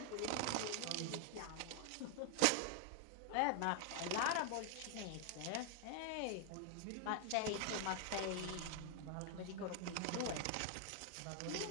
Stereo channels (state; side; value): different; both; correlation 0.00